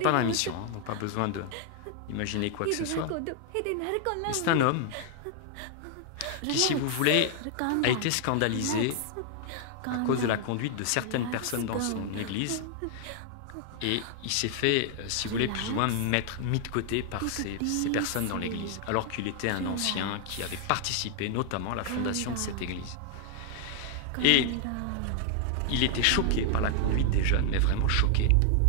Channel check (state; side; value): different; both; correlation 0.00